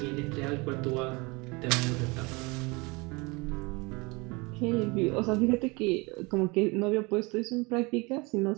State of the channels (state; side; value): quieter; left; 26.7 dB